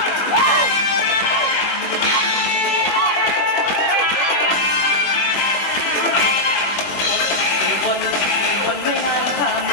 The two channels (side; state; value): right; late; 21 ms